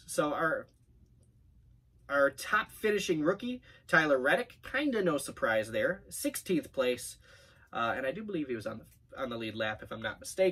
So our top finishing rookie, Tyler Reddick, kind of no surprise there. 16th place. And I do believe he was on the lead lap, if I'm not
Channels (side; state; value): both; identical; correlation 1.00